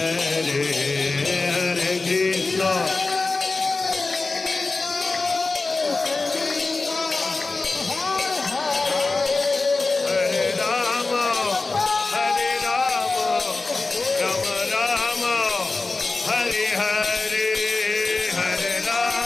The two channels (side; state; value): right; quieter; 3.7 dB